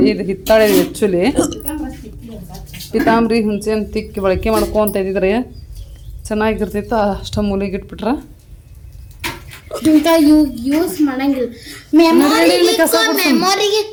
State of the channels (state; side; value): identical; both; correlation 1.00